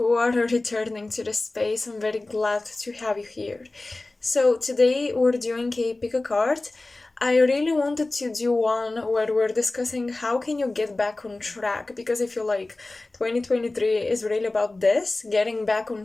are returning to the space. I'm very glad to have you here. So today we're doing a pick a card. I really wanted to do one where we're discussing how can you get back on track, because I feel like 2023 is really about this, getting back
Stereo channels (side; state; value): right; quieter; 3.0 dB